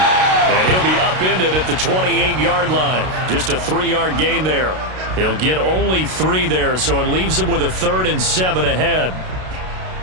And he'll be upended at the 28-yard line. Just a 3-yard gain there. He'll get only 3 there, so it leaves him with a 3rd and 7 ahead.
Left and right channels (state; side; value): late; left; 32 ms